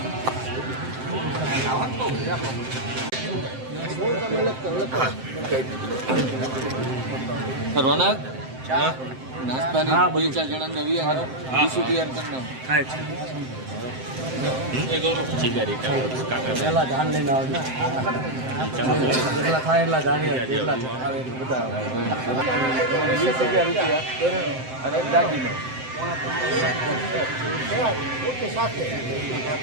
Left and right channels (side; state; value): left; late; 7.7 ms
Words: રોનક નાસ્તાની 2-4 જણા નવી ડીશું તૈયાર કરના પેલા ધાન લઈને આવે ને જેટલા થાય એટલા ધાન જેટલા આવે બધા 20,000 રૂપિયા અને દાગીનો